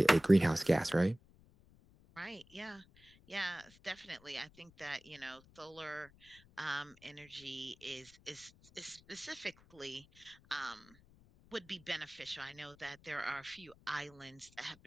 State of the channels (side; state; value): left; noise; rumble, 26 dB below the sound